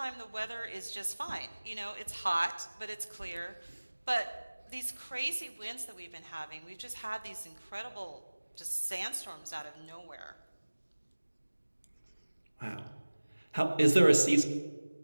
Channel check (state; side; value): inverted; both; correlation -1.00